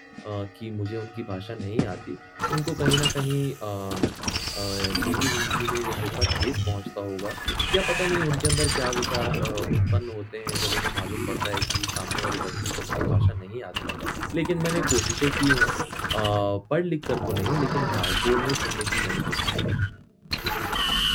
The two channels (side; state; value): both; identical; correlation 1.00